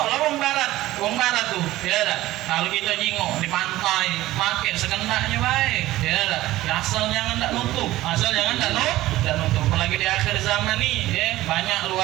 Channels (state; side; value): quieter; left; 16.3 dB